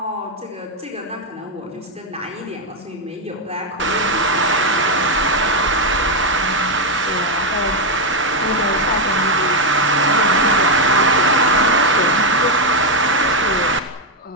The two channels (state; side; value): normal; both; correlation 0.03